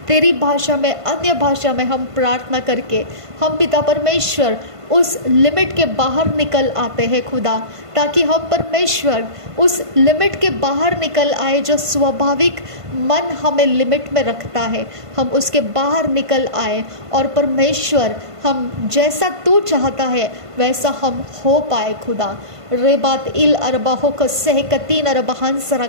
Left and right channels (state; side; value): late; left; 1.5 ms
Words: तेरी भाषा में, अन्य भाषा में हम प्रार्थना करके हम पिता परमेश्वर उस लिमिट के बाहर निकल आते हैं खुदा, ताकि हम परमेश्वर उस लिमिट के बाहर निकल आए जो स्वाभाविक मन हमें लिमिट में रखता है, हम उसके बाहर निकल आए और परमेश्वर हम जैसा तू चाहता है वैसा हम हो पाए खुदा। रेबात इल अरबाहो को सहकतीन अरबहांस